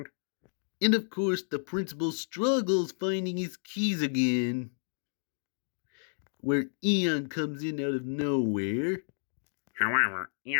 And of course, the principal struggles finding his keys again. Where Eon comes in out of nowhere. However,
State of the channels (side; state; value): right; silent; digital silence